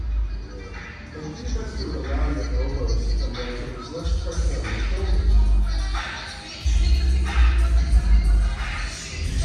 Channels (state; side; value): identical; both; correlation 1.00